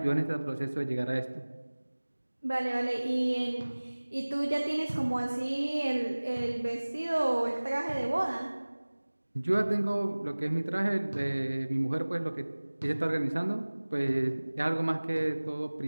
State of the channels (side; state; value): both; inverted; correlation -1.00